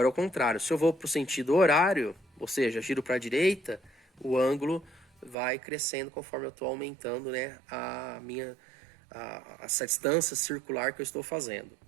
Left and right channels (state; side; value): drops out; left; at 5.4 s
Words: é o contrário. Se eu vou para o sentido horário, ou seja, giro para a direita, o ângulo vai crescendo conforme eu estou aumentando, né, essa distância circular que eu estou fazendo.